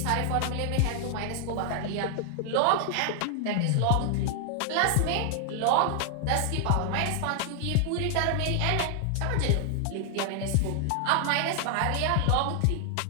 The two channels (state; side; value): different; both; correlation 0.00